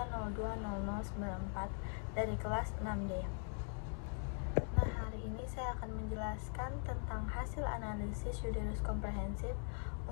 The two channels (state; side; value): silent; right; 50 dB below the other